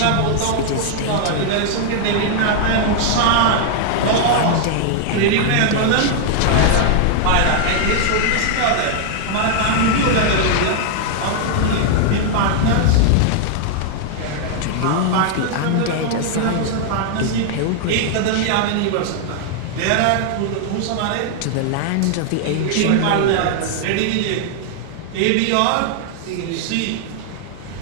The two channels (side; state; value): both; different; correlation 0.00